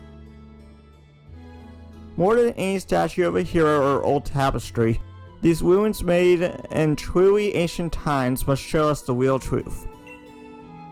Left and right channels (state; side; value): identical; both; correlation 1.00